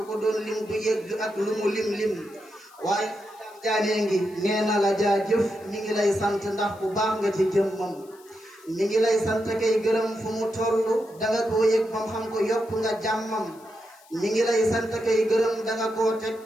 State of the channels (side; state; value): left; noise; hiss, 27 dB below the sound